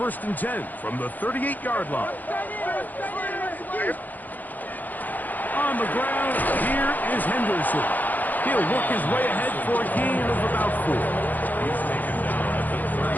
and 10 from the 38-yard line. On the ground, here is Henderson. He'll work his way ahead for a gain of about 4. He's taken down at the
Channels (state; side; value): late; right; 0.083 ms